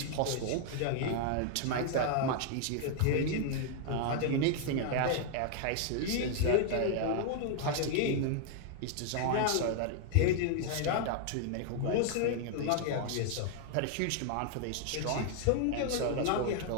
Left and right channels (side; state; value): both; different; correlation 0.00